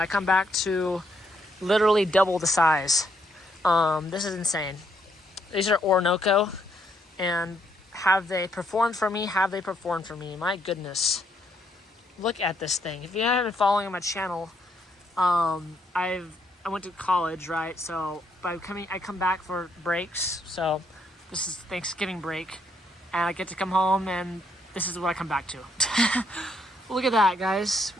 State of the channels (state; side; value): normal; both; correlation 0.73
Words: come back to literally double the size. This is insane. These are Orinoco, and have they performed for me? Have they performed for me? My goodness. Look at this thing. If you haven't been following my channel, I went to college, right? So I come back for breaks. So this is Thanksgiving break, and I get to come home, and this is what I come back to. Look at that, guys.